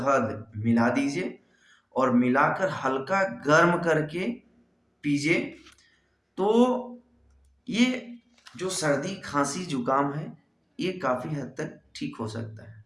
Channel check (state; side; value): identical; both; correlation 1.00